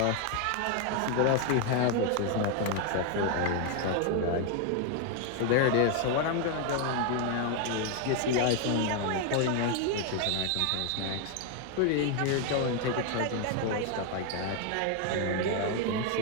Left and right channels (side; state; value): both; different; correlation 0.01